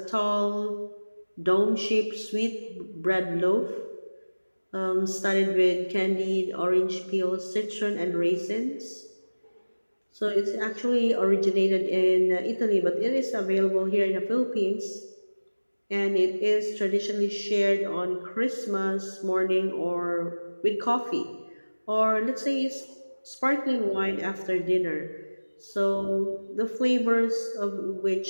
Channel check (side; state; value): both; inverted; correlation -1.00